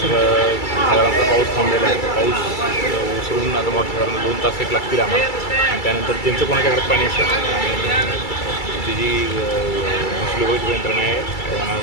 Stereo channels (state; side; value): late; right; 2.3 ms